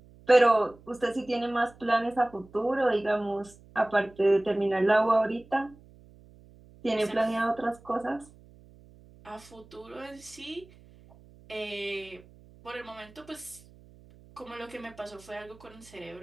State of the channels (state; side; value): noise; right; hum, 24 dB below the sound